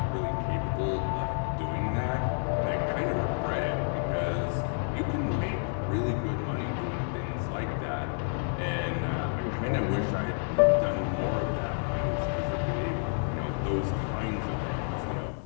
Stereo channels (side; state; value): right; silent; 58 dB below the other